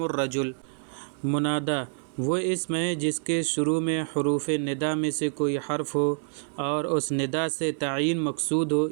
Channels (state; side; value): silent; left; 60 dB below the other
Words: الرجل۔ منادی وہ اسم ہے جس کے شروع میں حروف ندا میں سے کوئی حرف ہو اور اس ندا سے تعین مقصود ہو،